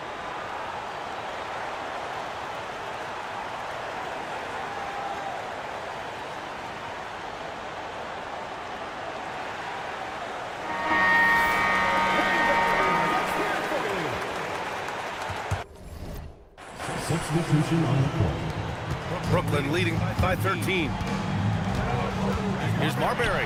Substitution on the court. Brooklyn leading by 13. Here's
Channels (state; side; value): identical; both; correlation 1.00